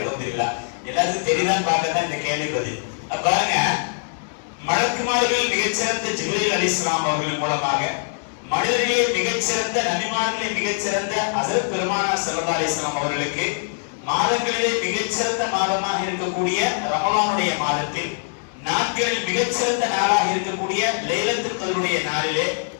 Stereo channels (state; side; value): silent; right; digital silence